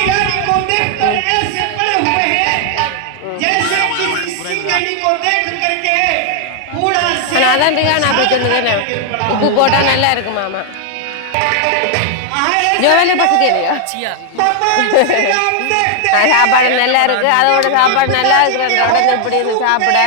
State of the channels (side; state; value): both; different; correlation 0.00